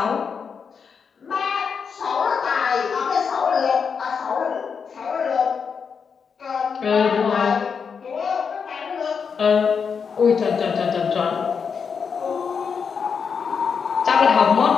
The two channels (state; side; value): quieter; right; 6.1 dB